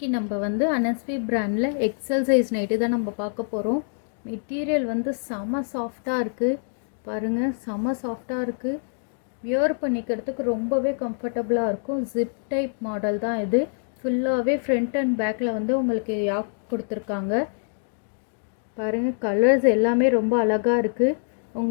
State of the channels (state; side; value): silent; right; digital silence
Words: நம்ம வந்து அனஸ்வி பிராண்டில் எக்ஸல் சைஸ் நைட்டி தான் நம்ம பார்க்க போகிறோம். மெட்டீரியல் வந்து செம சாஃப்டாக இருக்குது. பாருங்கள், செம சாஃப்டாக இருக்குது. வியர் பண்ணிக்கிறதுக்கு ரொம்பவே கம்ஃபர்டபுளாக இருக்கும். ஜிப் டைப் மாடல் தான் இது. ஃபுல்லாகவே ஃப்ரண்ட் அண்ட் பேக்கில் வந்து உங்களுக்கு யாக் கொடுத்துருக்காங்க. பாருங்கள், கலர்ஸ் எல்லாமே ரொம்ப அழகாக இருக்குது.